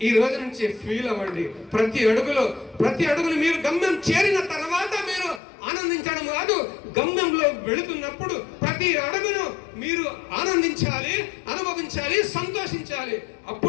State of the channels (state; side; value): drops out; right; at 5.4 s